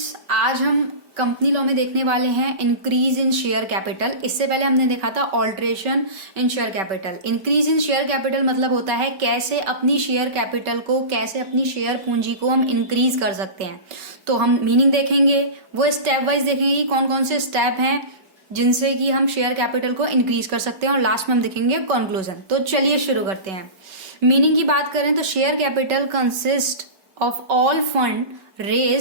आज हम कंपनी लॉ में देखने वाले हैं इंक्रीज इन शेयर कैपिटल। इससे पहले हमने देखा था alteration in share capital. Increase in share capital मतलब होता है कैसे अपनी शेयर कैपिटल को, कैसे अपनी शेयर पूंजी को हम इंक्रीज कर सकते हैं। तो हम मीनिंग देखेंगे, वो स्टेप वाइज देखेंगे कि कौन कौन से स्टेप हैं जिनसे कि हम शेयर कैपिटल को इंक्रीज कर सकते हैं, और लास्ट में हम देखेंगे कंक्लूजन। तो चलिए शुरू करते हैं। मीनिंग की बात करें तो share capital consist of all fund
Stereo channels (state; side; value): late; left; 5.2 ms